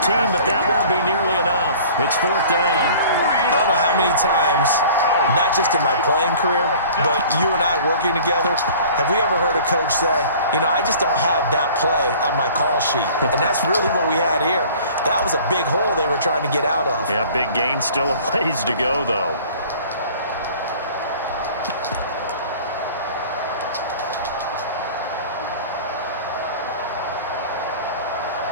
but that won't be nearly enough. It's 4th down. I don't know how many times, not just in my playing career, but you and I working together, have we ever heard a coach say, you know, I just don't have that play on my call sheet. And that's really what we had here. That was a big hole they were trying to get out of. Yeah, big gain, still a ways to go, though.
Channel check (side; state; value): both; inverted; correlation -0.47